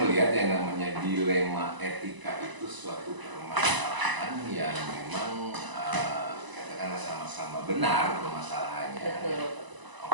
melihat yang namanya dilema etika itu suatu permasalahan yang memang katakanlah sama-sama benar permasalahannya.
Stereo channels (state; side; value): late; left; 1.0 ms